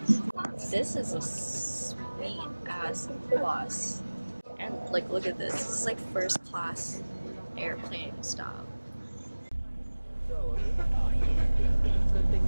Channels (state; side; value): inverted; both; correlation -1.00